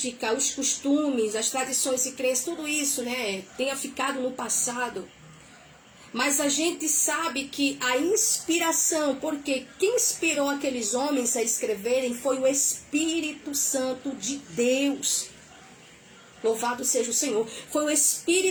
os costumes, as tradições e crenças, tudo isso, né, tenha ficado no passado. Mas a gente sabe que a inspiração, porque quem inspirou aqueles homens a escreverem foi o Espírito Santo de Deus. Louvado seja o Senhor. Foi o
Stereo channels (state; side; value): identical; both; correlation 1.00